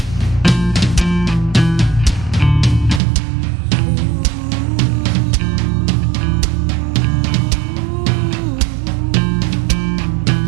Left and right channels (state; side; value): drops out; left; at 3.0 s